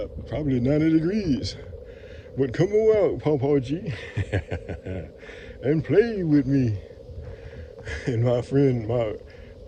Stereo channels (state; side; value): identical; both; correlation 1.00